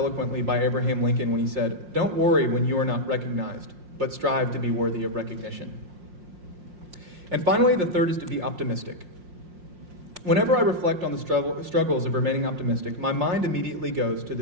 by Abraham Lincoln when he said, "Don't worry when you are not recognized, but strive to be worthy of recognition." And finally, the third is to be optimistic. Whenever I reflect on the struggles of remaining optimistic, my mind immediately goes to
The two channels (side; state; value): left; late; 5.6 ms